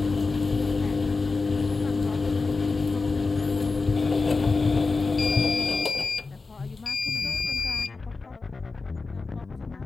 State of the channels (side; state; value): right; quieter; 4.0 dB